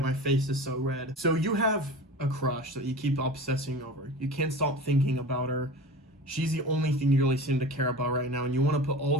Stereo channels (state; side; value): normal; both; correlation 0.35